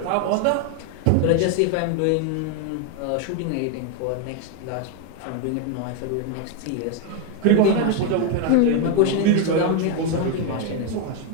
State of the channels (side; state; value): both; different; correlation 0.01